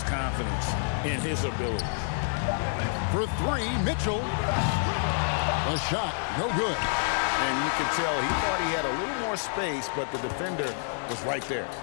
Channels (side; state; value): right; silent; 59 dB below the other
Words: confidence in his abilities. For 3, Mitchell. The shot, no good. And you could tell he thought he had a little more space, but the defender was right there.